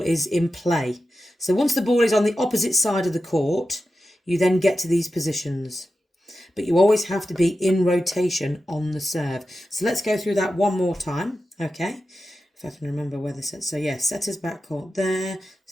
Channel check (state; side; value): normal; both; correlation 0.91